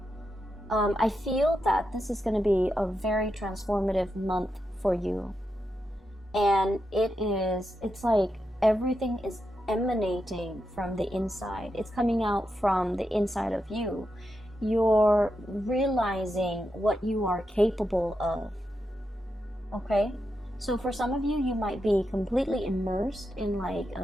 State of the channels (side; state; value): both; normal; correlation 0.86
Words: I feel that this is going to be a very transformative month for you. And it's like everything is emanating from the inside. It's coming out from the inside of you. You're realizing what you are capable of. Okay? So for some of you, you might be completely immersed in like